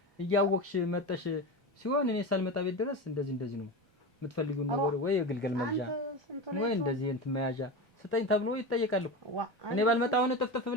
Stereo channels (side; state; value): both; normal; correlation 0.23